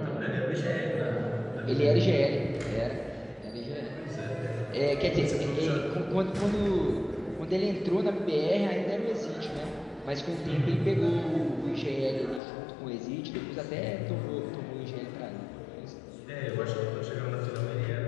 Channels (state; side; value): drops out; right; at 12.4 s